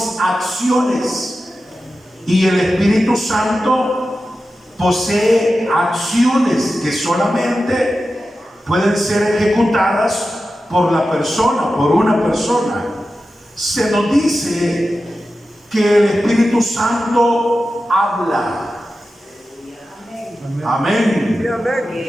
acciones, y el Espíritu Santo posee acciones que solamente pueden ser ejecutadas por la persona, por una persona. Se nos dice que el Espíritu Santo habla. Amén.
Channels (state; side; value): normal; both; correlation 0.92